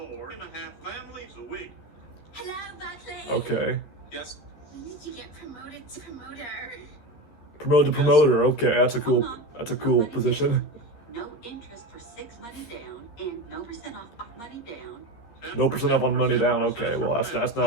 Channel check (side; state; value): right; late; 13 ms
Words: families a week. Hello, Buckley. Okay, Yes. When did you get promoted to promoter? promoted to promoter. Okay, that's a cool position. No interest for 6 money down and no percent off money down. No percent off on money down. Okay, well that's